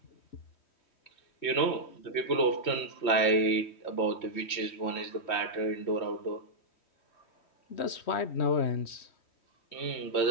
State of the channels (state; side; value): late; right; 3.1 ms